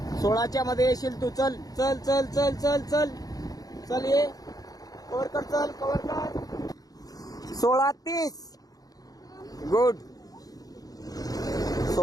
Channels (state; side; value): late; right; 0.18 ms